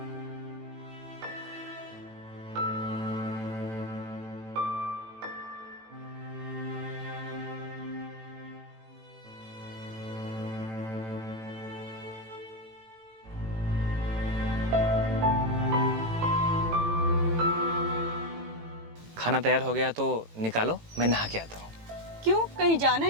खाना तैयार हो गया तो निकालो, मैं नहा के आता हूँ। क्यों, कहीं जाना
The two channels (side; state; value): left; late; 18 ms